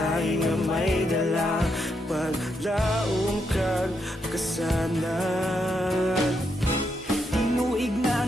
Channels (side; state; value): both; normal; correlation 0.80